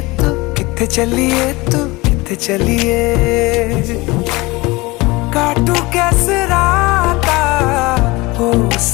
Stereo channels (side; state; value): right; quieter; 22.6 dB